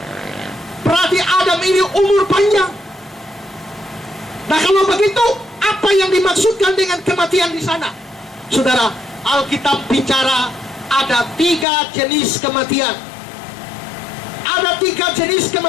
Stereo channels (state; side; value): drops out; right; at 11.7 s